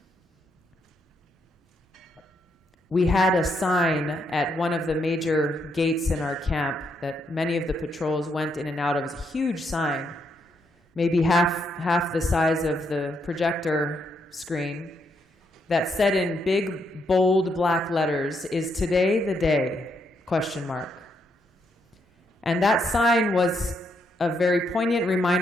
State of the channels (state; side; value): normal; both; correlation 0.77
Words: We had a sign at one of the major gates in our camp that many of the patrols went in and out of. It was a huge sign, maybe half the size of the projector screen, that said in big, bold black letters, "Is today the day?" ? And that sign was a very poignant